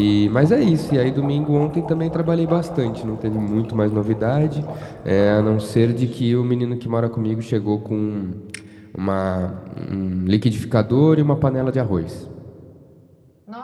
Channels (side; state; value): both; identical; correlation 1.00